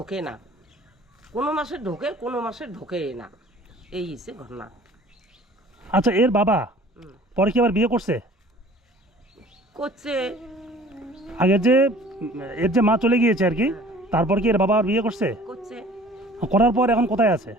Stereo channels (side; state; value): both; normal; correlation 0.49